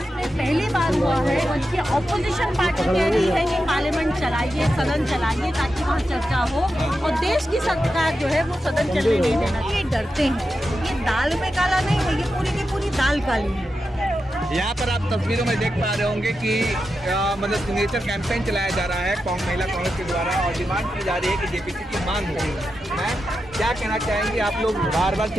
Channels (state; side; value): normal; both; correlation 0.89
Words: में पहली बार हुआ है कि ऑपोजिशन पार्टी कह रही है कि पार्लियामेंट चलाइए, सदन चलाइए ताकि वहाँ चर्चा हो, और देश की सरकार जो है वो सदन चलने नहीं देना। ये डरते हैं, ये दाल में काला नहीं है, ये पूरी की पूरी दाल काली है। यहाँ पर आप तस्वीरों में देख पा रहे होंगे कि मतलब सिग्नेचर कैंपेन चलाया जा रहा है महिला कांग्रेस के द्वारा, और डिमांड की जा रही है कि जेपीसी की मांग हो। मैं क्या कहना चाहेंगे, आप लोग बार बार